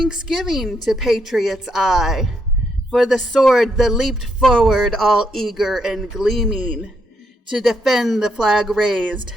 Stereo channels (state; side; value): normal; both; correlation 0.76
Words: to patriot's eye, for the sword that leaped forward all eager and gleaming, to defend the flag raised